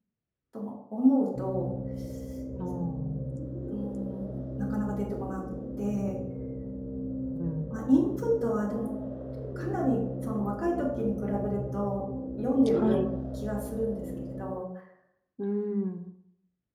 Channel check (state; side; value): identical; both; correlation 1.00